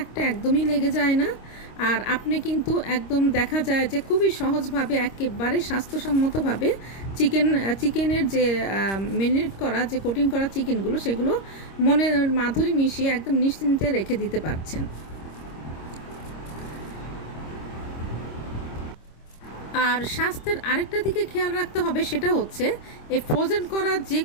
একটা একদমই লেগে যায় না। আর আপনি কিন্তু একদম দেখা যায় যে খুবই সহজভাবে একেবারে স্বাস্থ্যসম্মতভাবে চিকেনের যে মেরিনেট করা যে কোটিং করা চিকেনগুলো সেগুলো মনের মাধুরী মিশিয়ে একদম নিশ্চিন্তে রেখে দিতে পারছেন। আর স্বাস্থ্যের আরেকটা দিকে খেয়াল রাখতে হবে, সেটা হচ্ছে এই ফ্রোজেন করা যে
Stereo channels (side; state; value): right; late; 26 ms